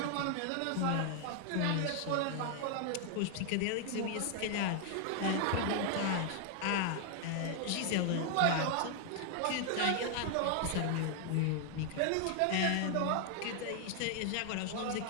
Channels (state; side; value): different; both; correlation 0.00